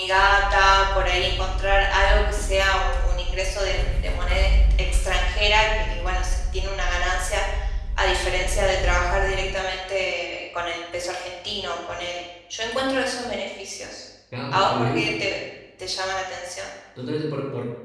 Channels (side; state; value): both; identical; correlation 1.00